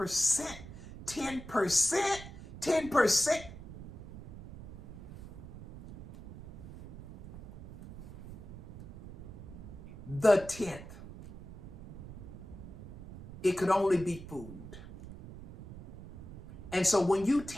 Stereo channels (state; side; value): noise; right; rumble, 14 dB below the sound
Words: 10%, 10%. The 10th. It could only be food. And so when you